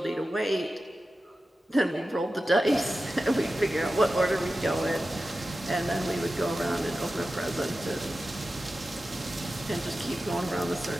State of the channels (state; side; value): normal; both; correlation 0.93